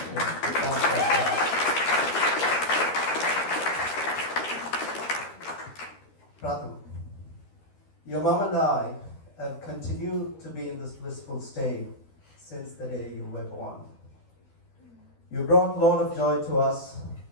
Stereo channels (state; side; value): late; right; 12 ms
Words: Pratham, your mom and I have continued to be in this blissful state since the day you were born. You brought a lot of joy to us